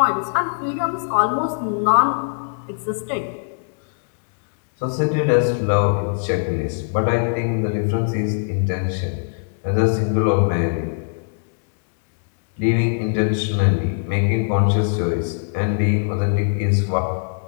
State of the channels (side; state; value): right; silent; digital silence